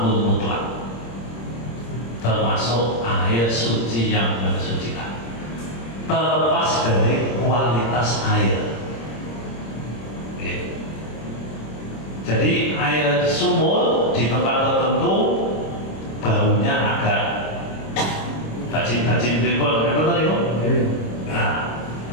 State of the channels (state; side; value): late; right; 26 ms